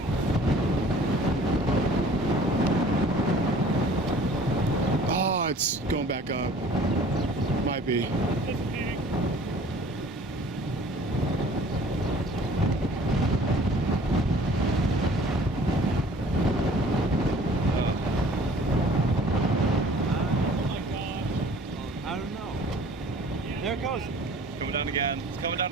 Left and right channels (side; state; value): both; normal; correlation 0.50